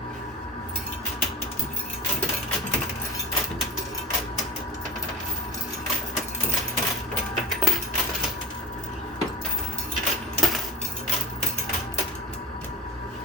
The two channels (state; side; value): normal; both; correlation 0.36